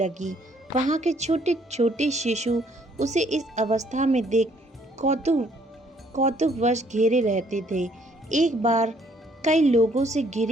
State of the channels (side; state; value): both; normal; correlation 0.65